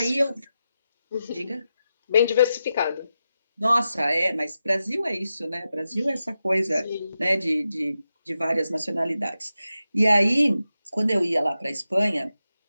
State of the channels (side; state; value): both; inverted; correlation -0.90